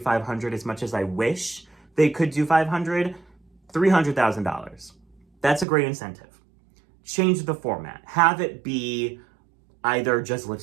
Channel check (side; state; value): left; drops out; at 5.7 s